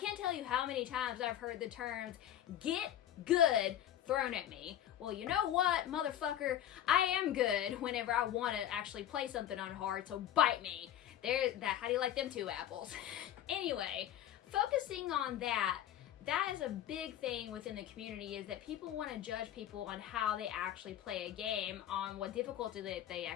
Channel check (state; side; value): quieter; right; 11.5 dB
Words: tell you how many times I've heard the terms get good thrown at me. Well, you know what, motherfucker? I am good whenever I want to actually play something on hard, so bite me. How do you like them 2 apples? Anyway, focusing on that is a big thing within the community, is that people want to judge people on how they actually play a game, on what difficulty they